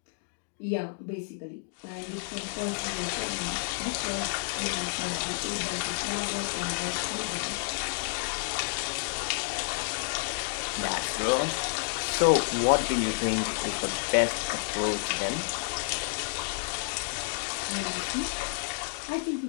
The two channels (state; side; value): silent; right; digital silence